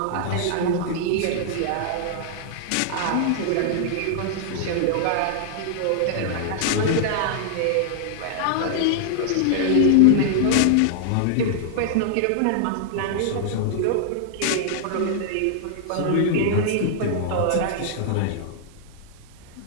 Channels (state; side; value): different; both; correlation -0.01